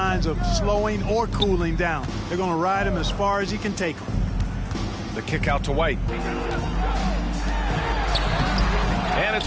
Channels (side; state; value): both; identical; correlation 1.00